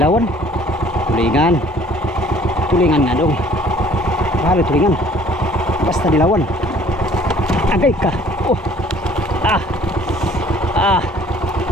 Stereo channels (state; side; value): normal; both; correlation 0.55